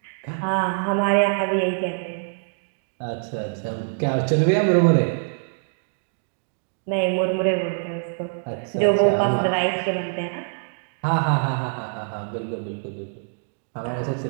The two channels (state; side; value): silent; left; digital silence